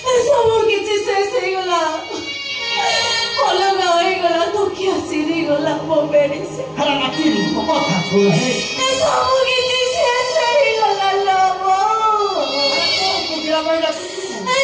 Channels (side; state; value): both; identical; correlation 1.00